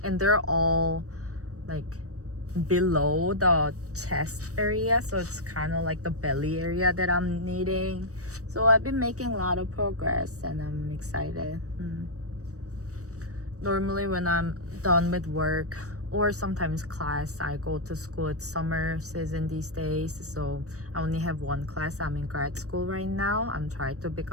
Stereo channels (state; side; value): late; left; 0.66 ms